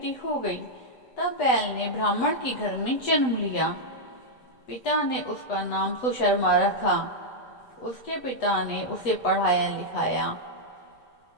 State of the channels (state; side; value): late; right; 8.1 ms